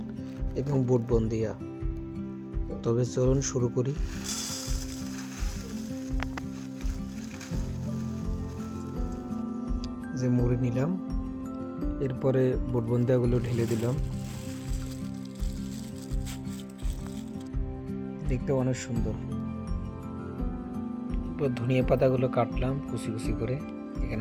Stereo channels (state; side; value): identical; both; correlation 1.00